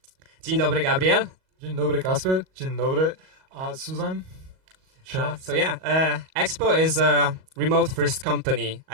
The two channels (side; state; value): left; late; 38 ms